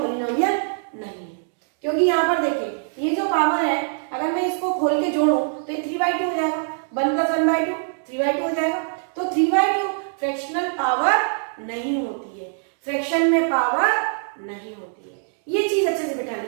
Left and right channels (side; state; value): left; silent; 63 dB below the other